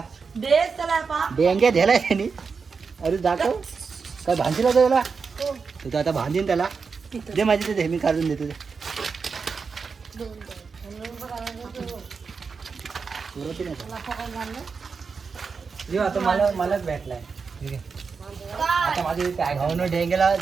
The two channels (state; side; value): quieter; left; 5.2 dB